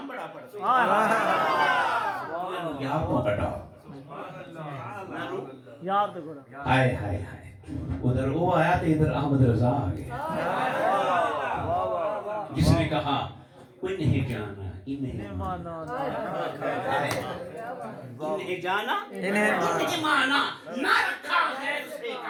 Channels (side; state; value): both; identical; correlation 1.00